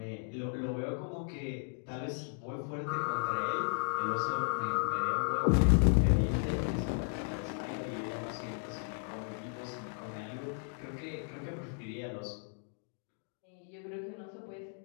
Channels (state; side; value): silent; right; 54 dB below the other